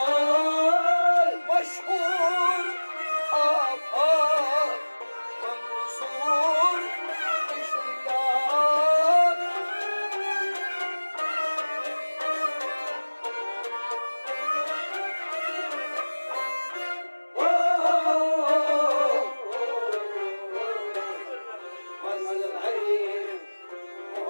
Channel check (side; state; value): both; inverted; correlation -1.00